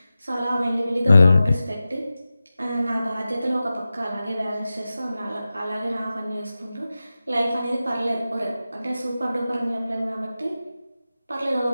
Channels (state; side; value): inverted; both; correlation -0.94